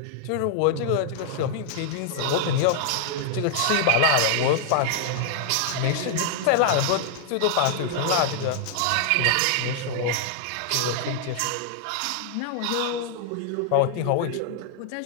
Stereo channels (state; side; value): different; both; correlation -0.01